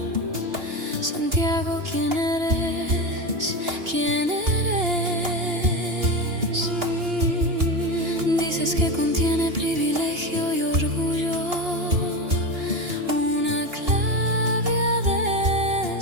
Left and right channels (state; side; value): late; left; 2.9 ms